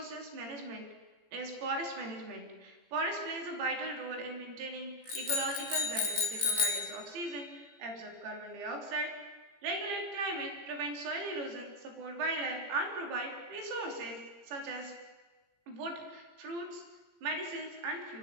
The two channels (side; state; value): left; late; 17 ms